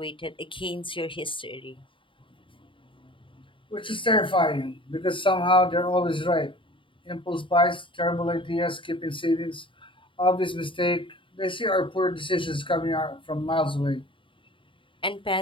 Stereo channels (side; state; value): right; late; 0.25 ms